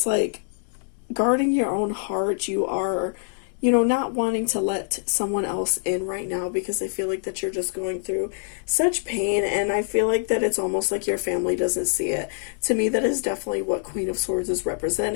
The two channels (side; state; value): right; silent; digital silence